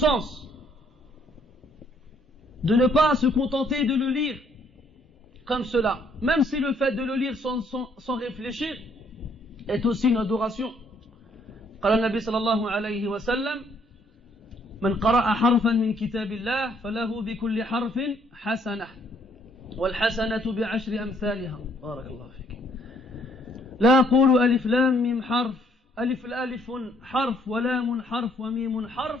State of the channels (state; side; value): normal; both; correlation 0.66